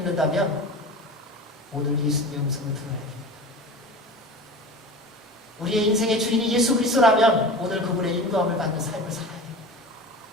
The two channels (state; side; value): normal; both; correlation 0.33